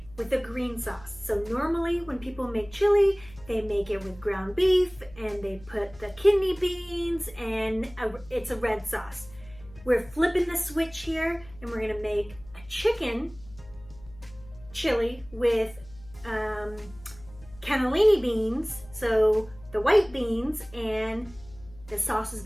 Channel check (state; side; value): noise; left; hum, 21 dB below the sound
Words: with a green sauce. So normally when people make chili, they make it with ground beef and they put the kidney beans and it's a red sauce. We're flipping the switch here and we're gonna make a chicken chili with cannelloni beans, so the white beans, and the sauce is